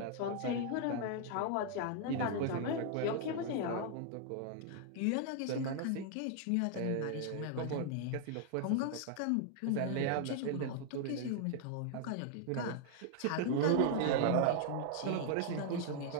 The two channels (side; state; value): both; different; correlation 0.00